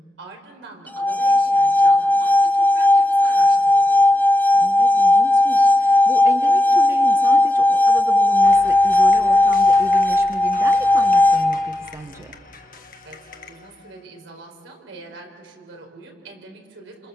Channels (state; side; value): normal; both; correlation 0.88